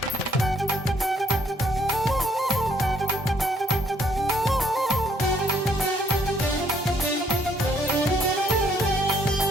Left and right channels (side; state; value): both; normal; correlation 0.66